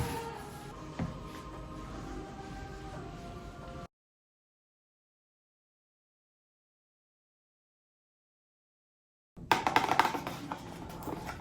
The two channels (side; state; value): both; identical; correlation 1.00